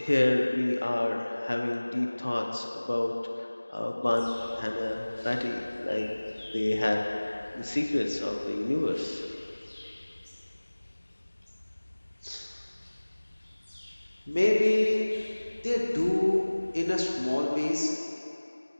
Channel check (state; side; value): inverted; both; correlation -1.00